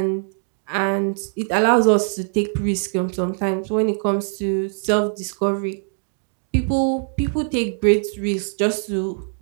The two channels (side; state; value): left; silent; 64 dB below the other